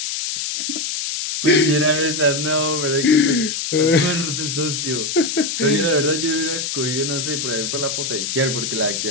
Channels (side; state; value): left; noise; hiss, 3 dB below the sound